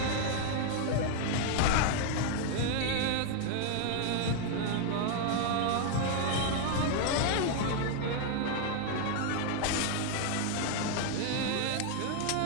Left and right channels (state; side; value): different; both; correlation 0.00